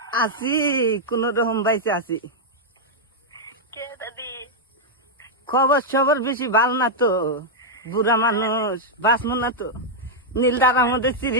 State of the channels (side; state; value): both; normal; correlation -0.03